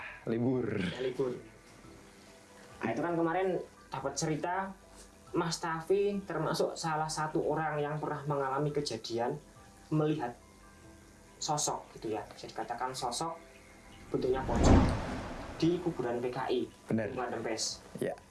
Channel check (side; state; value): both; identical; correlation 1.00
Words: libur. Ya, libur. Nah, itu kan kemarin dapat cerita Mas Tafi termasuk salah satu orang yang pernah mengalami kejadian melihat sosok gitu ya. Bisa dikatakan sosok bentuknya pocong di kuburan PKI. Benar. Kuburan Rempes. Ya.